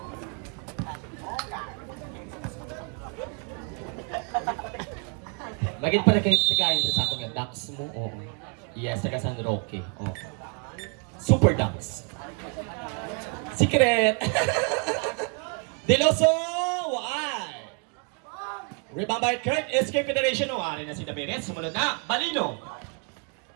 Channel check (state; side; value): quieter; left; 36.5 dB